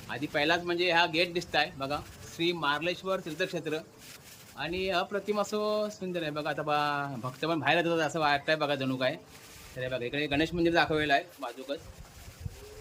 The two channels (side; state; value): both; identical; correlation 1.00